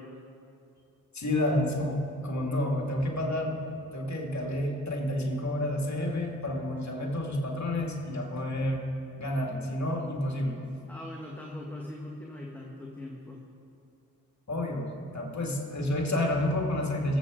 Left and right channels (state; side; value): normal; both; correlation 0.52